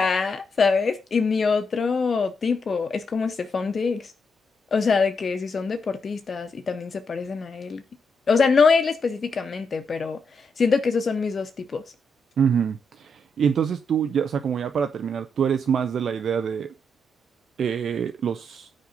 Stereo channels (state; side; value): normal; both; correlation 0.80